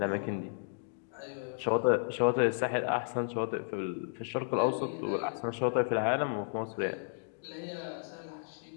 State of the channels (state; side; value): silent; right; digital silence